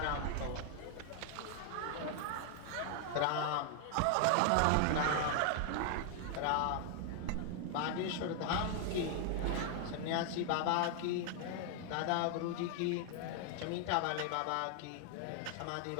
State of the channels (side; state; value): both; different; correlation 0.00